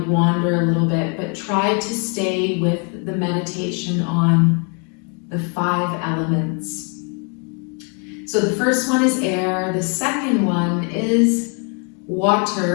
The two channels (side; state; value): right; quieter; 37.6 dB